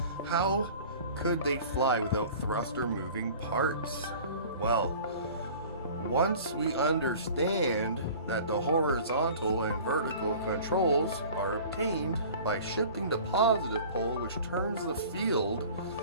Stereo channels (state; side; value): inverted; both; correlation -0.44